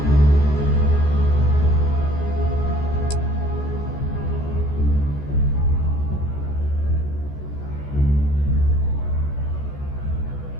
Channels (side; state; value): right; late; 14 ms